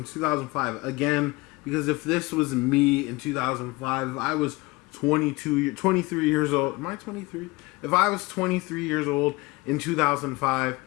2005. Again, because if this was me in 2005, if I was 23 years old, am I 23? If I was 23 years old in 2005,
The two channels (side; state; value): right; quieter; 23.5 dB